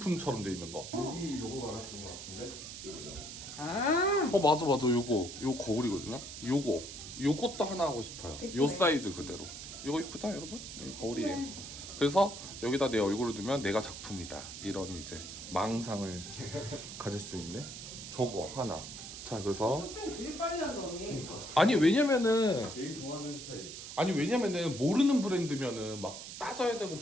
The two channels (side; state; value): right; noise; hiss, 10 dB below the sound